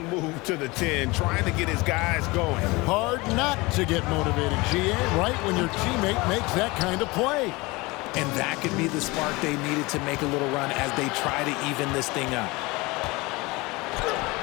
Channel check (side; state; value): right; quieter; 23.5 dB